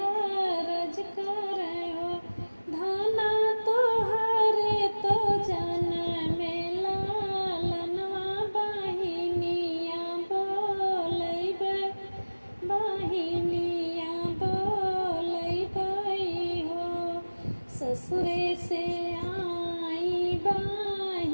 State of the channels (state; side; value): inverted; both; correlation -1.00